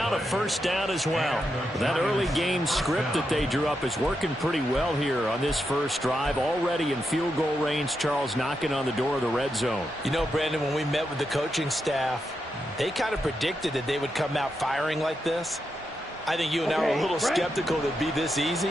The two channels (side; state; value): both; normal; correlation 0.85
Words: a 1st down as well. That early game script that they drew up is working pretty well here on this first drive. Already in field goal range, Charles, knocking on the door of the red zone. You know, Brandon, when we met with the coaching staff, they kind of predicted that they would come out firing like this. I think you and I were a little skeptical that it'd be this